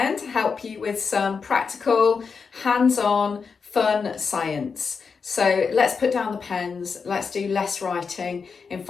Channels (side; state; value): right; quieter; 5.5 dB